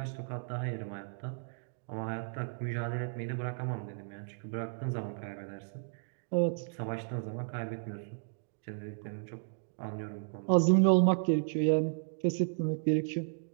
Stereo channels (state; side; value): silent; left; digital silence